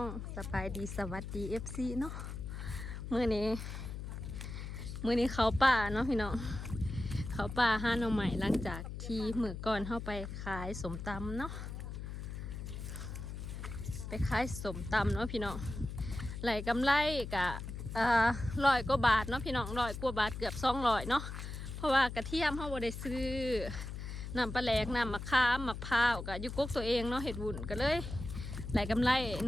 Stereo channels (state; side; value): noise; left; hum, 7 dB below the sound